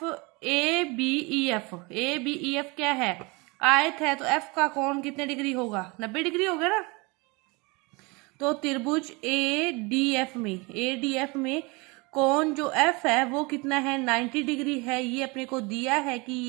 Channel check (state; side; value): quieter; left; 27.0 dB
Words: बी ई एफ क्या है, आयत है, तो एफ का कोण कितने डिग्री होगा, 90 डिग्री होगा ना। तो त्रिभुज ए डी एफ में कोण जो एफ है वो कितना है, 90 डिग्री है। ये अपने को दिया है कि